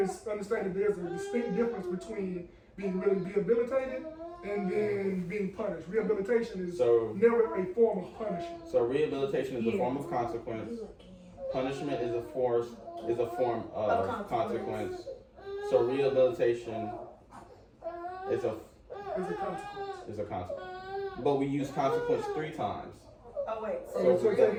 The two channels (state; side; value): identical; both; correlation 1.00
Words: is understanding there's a distinct difference between being really rehabilitated and then being punished. Rehabilitation is So- never a form of punishment. so rehabilitation is a form of consequence. Punishment is a form of consequence. So rehabilitation is a It's a consequence. consequence. But we use consequence 3 times. Oh wait, So So we say got- it